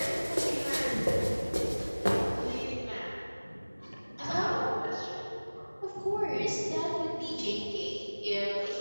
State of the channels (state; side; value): inverted; both; correlation -1.00